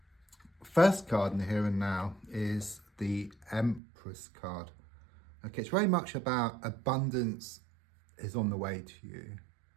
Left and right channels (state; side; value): drops out; left; at 3.8 s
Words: first card in the here and now is the Empress card. Okay, it's very much about abundance is on the way to you.